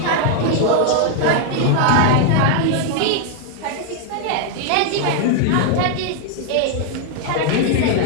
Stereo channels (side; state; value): both; different; correlation 0.00